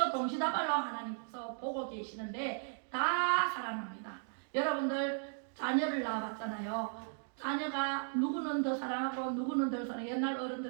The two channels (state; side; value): silent; left; 54 dB below the other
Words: 동시다발로 하나님께서 보고 계시는데 다 사랑합니다. 여러분들 자녀를 낳아봤잖아요. 자녀가 누구는 더 사랑하고 누구는 덜 사랑해. 옛날